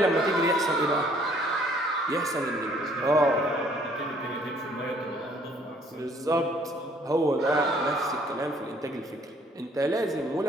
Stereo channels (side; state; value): both; normal; correlation 0.61